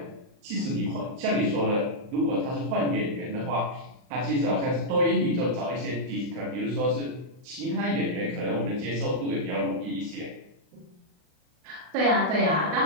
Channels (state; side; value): late; left; 39 ms